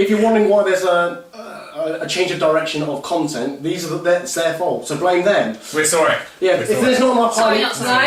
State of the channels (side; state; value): both; identical; correlation 1.00